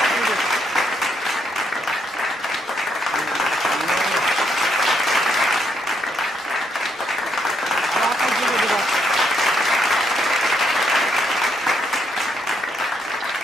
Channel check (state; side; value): normal; both; correlation 0.75